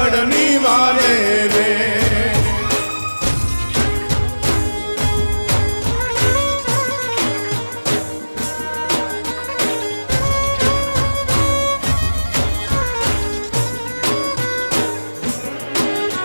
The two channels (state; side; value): inverted; both; correlation -1.00